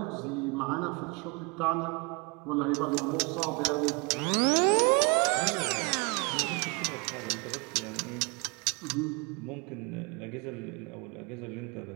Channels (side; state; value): left; quieter; 29.8 dB